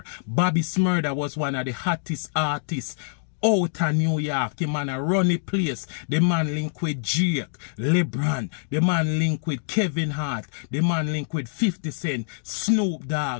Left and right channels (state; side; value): silent; right; digital silence